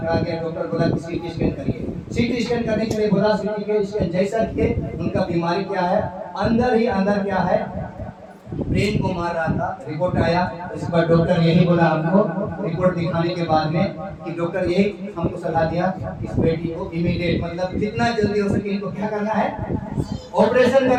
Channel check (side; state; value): both; identical; correlation 1.00